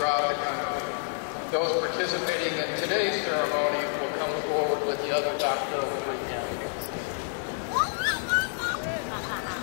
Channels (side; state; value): right; silent; digital silence